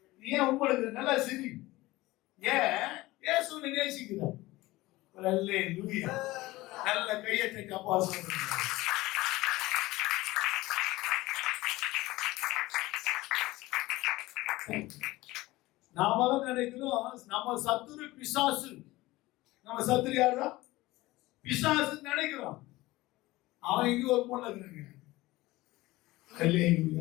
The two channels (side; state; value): right; quieter; 19.0 dB